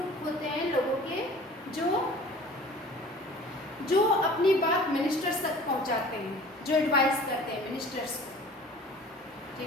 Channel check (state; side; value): normal; both; correlation 0.45